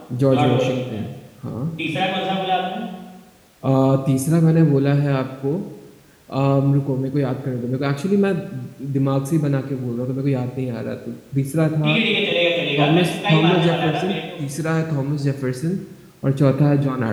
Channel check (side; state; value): both; identical; correlation 1.00